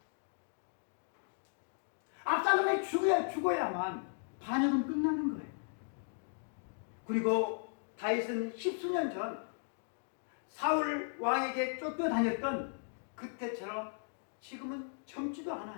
압살롬이 죽어야만 반역은 끝나는 거예요. 그리고 다윗은 십수년 전 사울 왕에게 쫓겨다녔던 그때처럼 지금은 젊지도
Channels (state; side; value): silent; right; digital silence